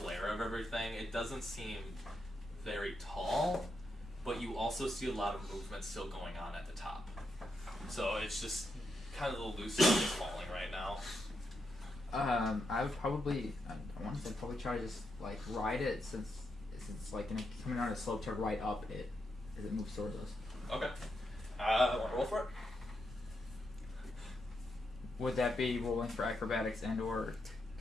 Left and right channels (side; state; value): both; normal; correlation 0.83